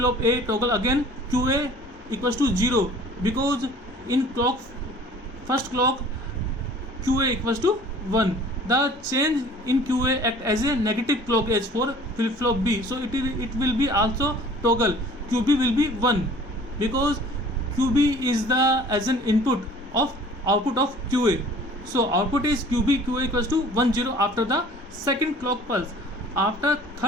A toggle again, QA equals to 0 because in first clock QA equals to 1. The change in QA act as a negative clock edge for flip-flop B. So it will be also toggle. QB will be 1 because QB is the as an input of output of QA. So output is QB, QA equals to 1 0 after the second clock pulse. After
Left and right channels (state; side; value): normal; both; correlation 0.49